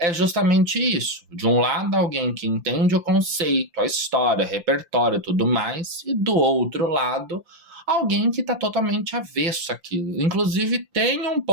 justamente isso. De um lado, alguém que entende o conceito, a história, o repertório e tudo mais, e do outro lado, alguém que está totalmente avesso àquilo. Inclusive, tem um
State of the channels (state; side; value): late; left; 5.8 ms